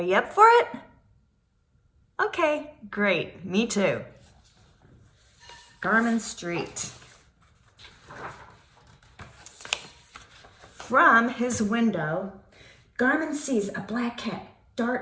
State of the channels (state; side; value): identical; both; correlation 1.00